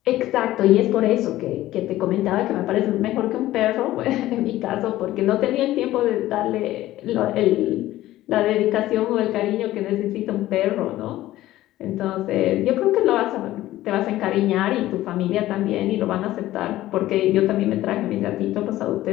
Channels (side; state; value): right; quieter; 15.3 dB